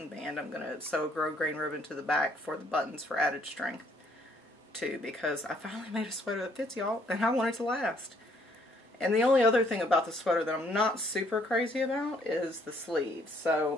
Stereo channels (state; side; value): normal; both; correlation 0.66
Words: band, I'm going to sew a grosgrain ribbon to the back for the buttons for added strength, too, because I finally made a sweater that fits, y'all, and I want it to last. And the only other thing about the sweater that I'm not super crazy about is the sleeves.